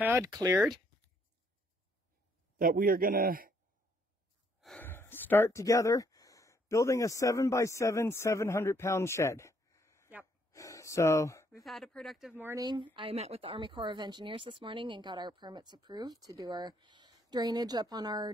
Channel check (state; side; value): normal; both; correlation 0.69